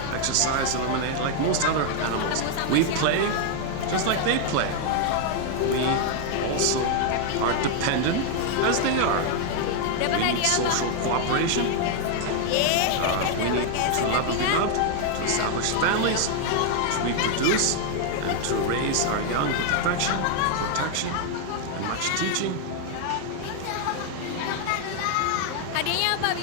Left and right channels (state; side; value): different; both; correlation 0.00